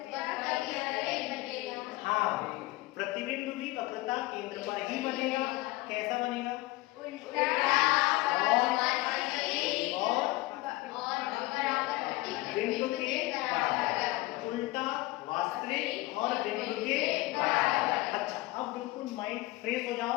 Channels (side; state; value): right; quieter; 19.9 dB